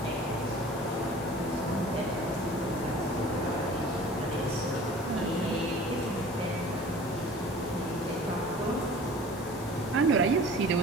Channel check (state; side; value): normal; both; correlation 0.44